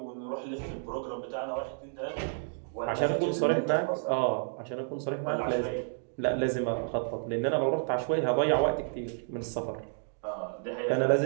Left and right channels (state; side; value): silent; left; digital silence